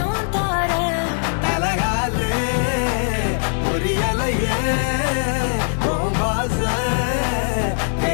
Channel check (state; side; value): silent; right; 65 dB below the other